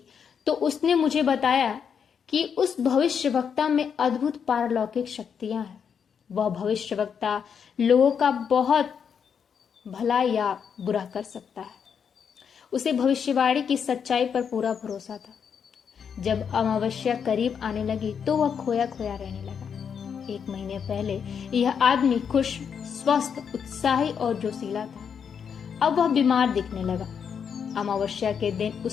तो उसने मुझे बताया कि उस भविष्यवक्ता में अद्भुत पारलौकिक शक्तियां हैं। वह भविष्यवक्ता लोगों का बहुत भला या बुरा कर सकता है। उसे भविष्यवाणी की सच्चाई पर पूरा भरोसा था। जब अमावस्या करीब आने लगी तो वह खोया खोया रहने लगा। 1 महीने पहले यह आदमी खुश, स्वस्थ, उत्साही और जोशीला था। अब वह बीमार दिखने लगा। अमावस्या के दिन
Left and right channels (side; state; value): right; quieter; 7.1 dB